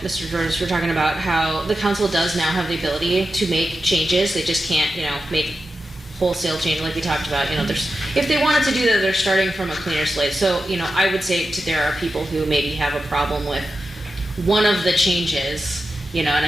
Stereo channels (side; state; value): both; normal; correlation 0.91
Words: Mr. George. We're talking about how the council does now have the ability to make changes. They just can't, make wholesale change like we talked about. If they wanted to do that, they're starting from a cleaner slate. So, I would say there are people who maybe have a problem with one of the changes, and